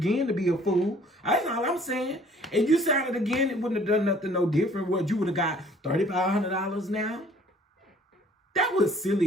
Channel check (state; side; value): normal; both; correlation 0.56